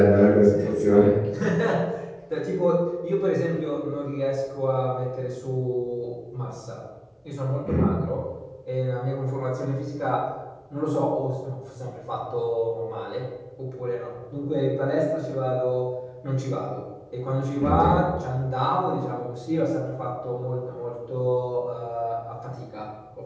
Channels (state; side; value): identical; both; correlation 1.00